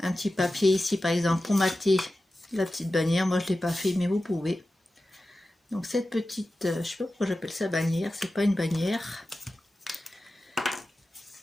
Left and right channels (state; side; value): normal; both; correlation 0.94